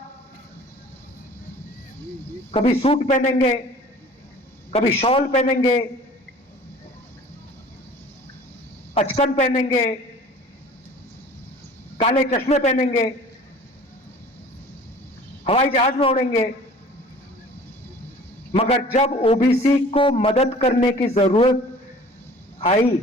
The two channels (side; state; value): both; normal; correlation 0.47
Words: कभी सूट पहनेंगे, कभी शॉल पहनेंगे, अचकन पहनेंगे, काले चश्मे पहनेंगे, हवाई जहाज में उड़ेंगे। मगर जब ओबीसी को मदद करने की जरूरत आई,